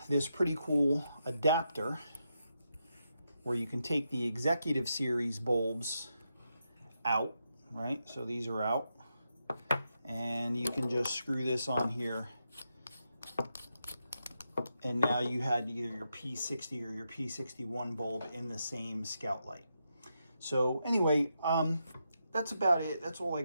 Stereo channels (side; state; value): both; inverted; correlation -0.84